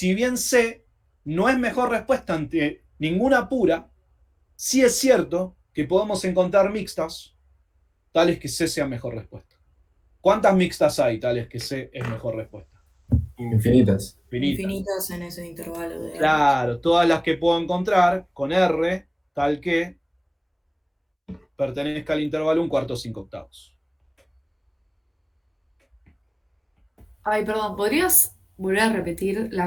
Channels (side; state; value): both; identical; correlation 1.00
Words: bien C no es mejor respuesta ante ninguna pura, sí es cierto que podemos encontrar mixtas tales que C sea mejor respuesta. ¿Cuántas mixtas hay tales que C es mejor respuesta? Infinitas. Infinitas en ese intervalo de R. Claro, todas las que puedo encontrar con R, tal que pertenezca al intervalo 1/4-5/8. Ay, perdón, ¿podrías volver a repetir